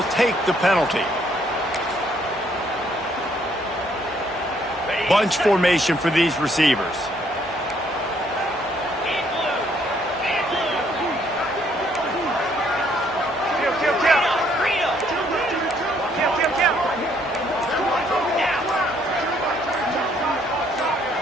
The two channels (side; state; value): both; normal; correlation 0.67